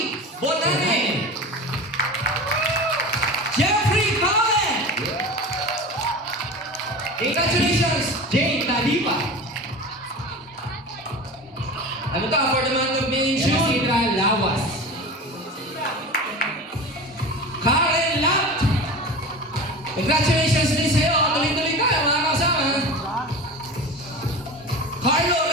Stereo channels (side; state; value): both; normal; correlation 0.32